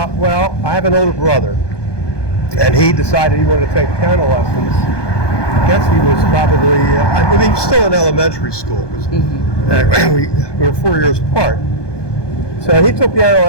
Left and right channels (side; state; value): right; late; 1.2 ms